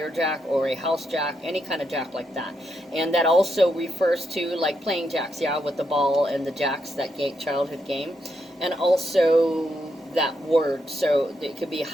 jack or a house jack, any kind of jack like that. And that also refers to like playing jacks, yeah, with the ball and the jacks, that childhood game. And also that word, so it could be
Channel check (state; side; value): normal; both; correlation 0.81